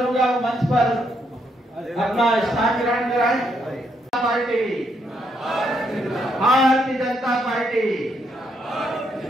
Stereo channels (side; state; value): both; normal; correlation 0.76